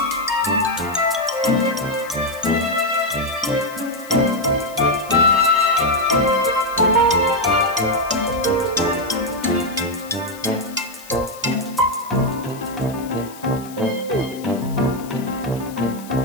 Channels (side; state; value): left; noise; hiss, 19 dB below the sound